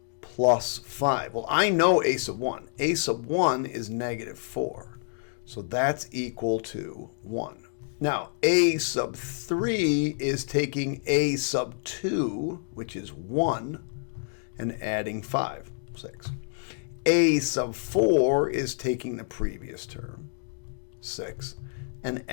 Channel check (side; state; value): right; silent; digital silence